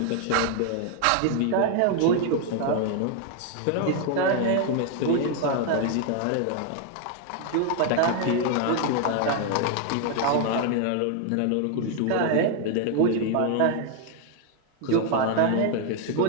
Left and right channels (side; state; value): both; different; correlation 0.01